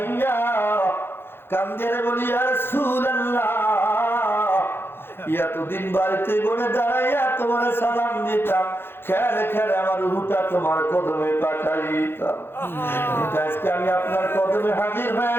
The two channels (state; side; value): late; right; 0.11 ms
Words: কান্দে বলি ইয়া রাসূলুল্লাহ, এতদিন বাড়িতে গড়ে দাঁড়াইয়া তোমার সালাম দিতাম, খেলে খেলে আমার রুহটা তোমার কদমে পাঠাইতাম, আজকে আমি আপনার কদমে হাজির হয়ে